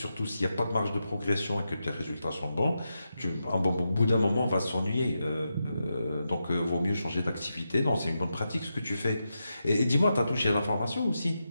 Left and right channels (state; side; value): inverted; both; correlation -0.87